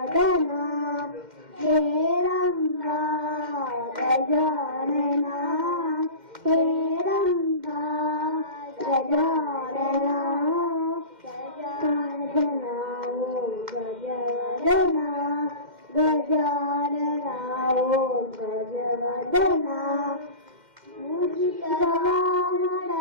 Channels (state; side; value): late; left; 2.1 ms